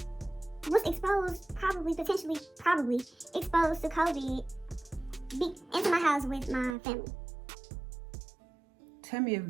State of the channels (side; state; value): left; drops out; at 6.8 s